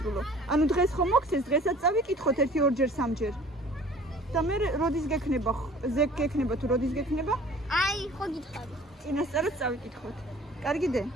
ანუ დღეს ხომ მოგცეს დღესაც წავიკითხოთ 1-2 3-ჯერ. და მე როდის გექნება თუ როდის გექნება? აი, ხო გითხარი. წინასწარად წავიკითხოთ. კარგიდე?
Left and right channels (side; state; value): both; normal; correlation 0.49